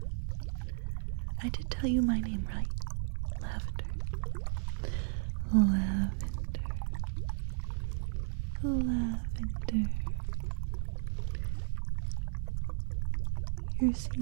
I did tell you my name right. Lavender. Lavender. Lavender. You're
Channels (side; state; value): left; silent; digital silence